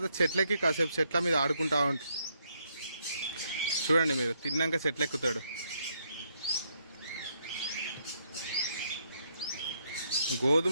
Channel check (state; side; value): inverted; both; correlation -0.75